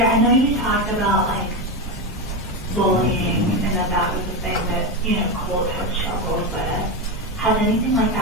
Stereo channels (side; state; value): both; normal; correlation 0.14